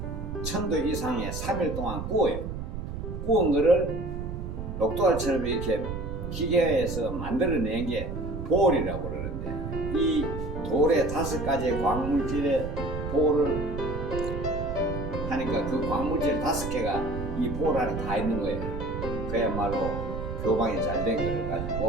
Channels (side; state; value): right; noise; rumble, 6 dB below the sound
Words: 1000도 이상의 3일 동안 구워요. 구운 거를 녹두알처럼 이렇게 기계에서 만들어낸 게 볼이라고 그러는데, 이 돌에 5가지의 광물질의 볼을 하니까 그 광물질 5개가 이 볼 안에 다 있는 거예요. 그야말로 교방이 잘 된 거를 가지고